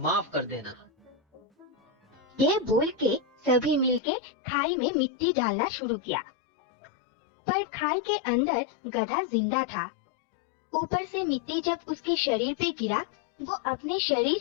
कर देना। ये बोल के सभी मिलके खाई में मिट्टी डालना शुरू किया, पर खाई के अंदर गधा जिंदा था। ऊपर से मिट्टी जब उसके शरीर पे गिरा, वो अपने शरीर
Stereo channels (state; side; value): drops out; right; at 4.0 s